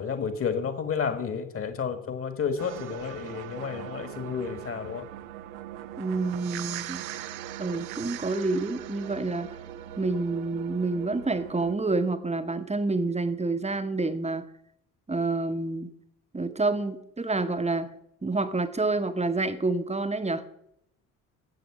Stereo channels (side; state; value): both; normal; correlation 0.50